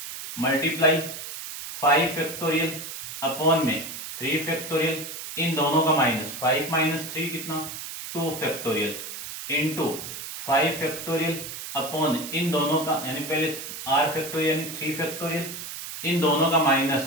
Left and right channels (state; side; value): noise; right; hiss, 9 dB below the sound